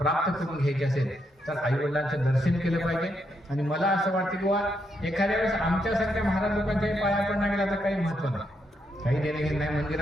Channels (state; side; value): normal; both; correlation 0.79